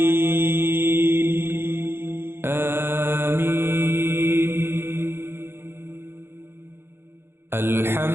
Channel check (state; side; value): late; left; 0.11 ms